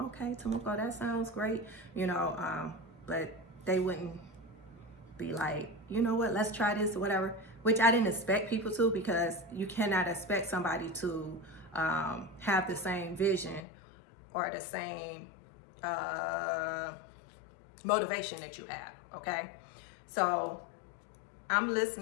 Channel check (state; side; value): drops out; right; at 13.6 s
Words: Temuco, that sounds great, but they wouldn't be like, you know what, let's try this or whatever, which I didn't expect people to, because you cannot expect somebody to have the same vision or the same motivation that you have, okay? So I'm